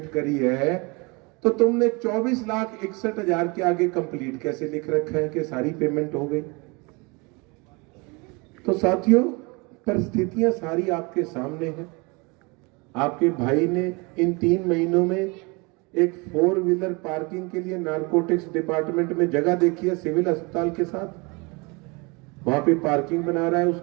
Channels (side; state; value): left; quieter; 28.1 dB